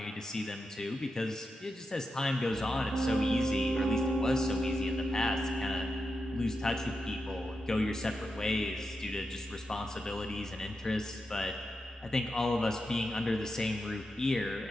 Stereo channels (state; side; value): normal; both; correlation 0.88